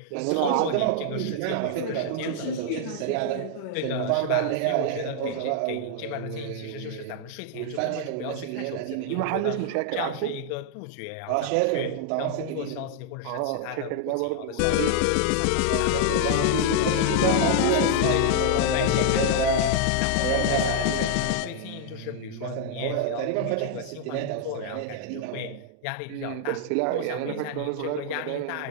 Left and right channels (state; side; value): different; both; correlation 0.00